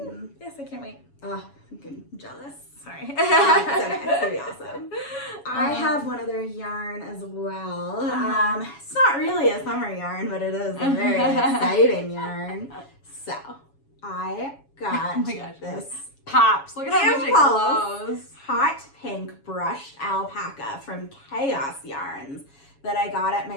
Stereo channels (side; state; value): right; late; 7.2 ms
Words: Yes, I can't wait. Oh, I'm jealous. Sorry. It's okay. It's gonna be awesome. I have one other yarn as well. It's not really a summer yarn, but it is a very exciting yarn. So I got this pops. Look at how much it glows. Hot pink brushed alpaca from Chaos Yarns that I got at